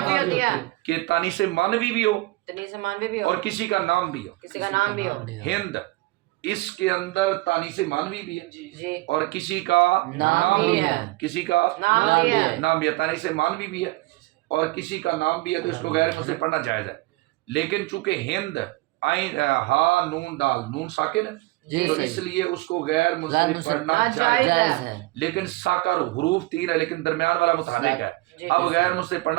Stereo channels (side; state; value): left; quieter; 21.6 dB